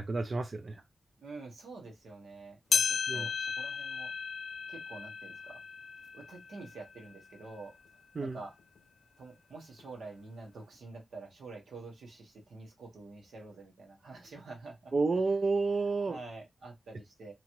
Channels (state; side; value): normal; both; correlation 0.86